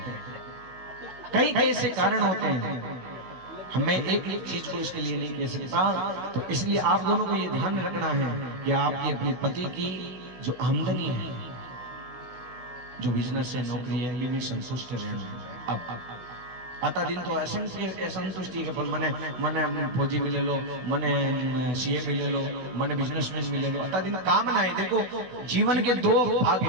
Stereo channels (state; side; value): late; left; 16 ms